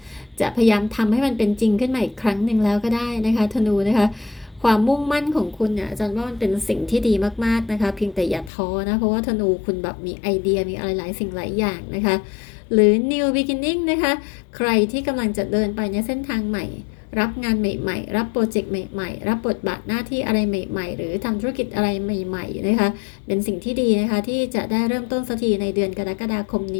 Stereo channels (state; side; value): drops out; right; at 8.5 s